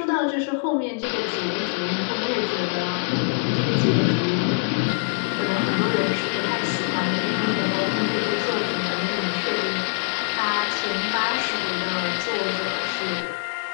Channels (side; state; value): right; silent; 63 dB below the other